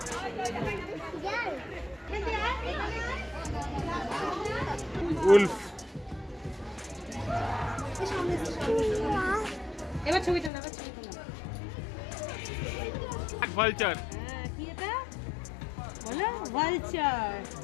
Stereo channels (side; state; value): right; drops out; at 10.5 s